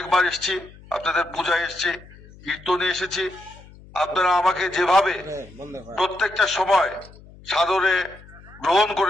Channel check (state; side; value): noise; left; hum, 22 dB below the sound